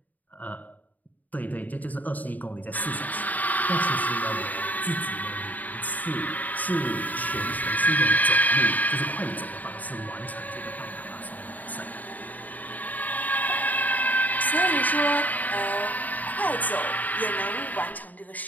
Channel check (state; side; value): late; right; 0.079 ms